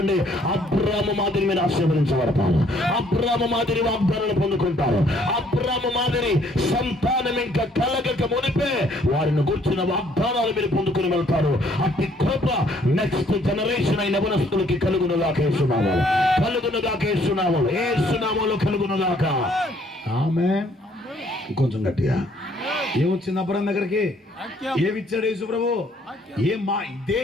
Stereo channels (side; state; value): both; normal; correlation 0.63